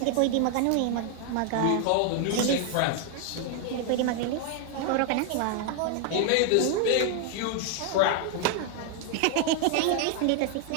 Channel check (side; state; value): both; different; correlation 0.00